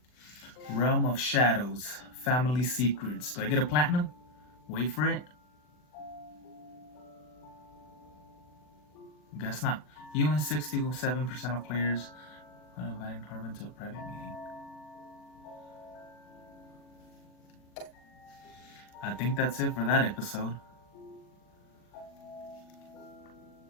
Realm of Shadows. Family Secrets. Do I get a platinum? Wait for it. Guess not. You and 67% of players are inviting Harvin to a private meeting. I think that's it for that episode.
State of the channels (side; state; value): right; late; 40 ms